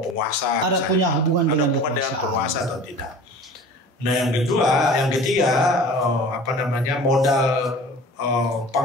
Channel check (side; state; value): both; normal; correlation 0.41